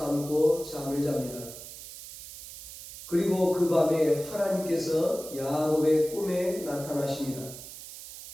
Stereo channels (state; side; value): noise; right; hiss, 13 dB below the sound